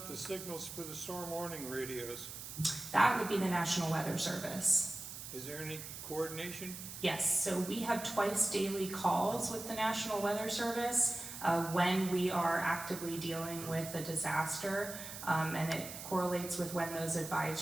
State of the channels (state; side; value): noise; right; hiss, 10 dB below the sound